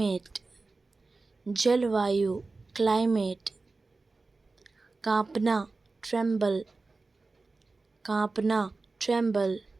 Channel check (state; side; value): quieter; left; 3.7 dB